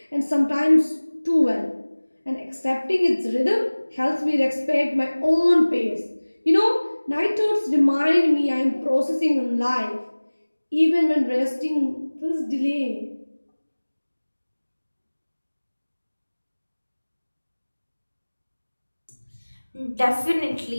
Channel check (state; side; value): inverted; both; correlation -1.00